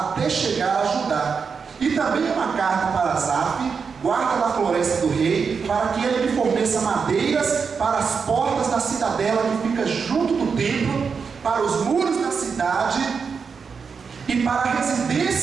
até chegar a Judá. E também uma carta para Asaf, guarda da floresta do rei, para que ele me forneça madeiras para as portas da cidadela que fica junto do templo, para os muros da cidade e para a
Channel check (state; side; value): quieter; left; 5.7 dB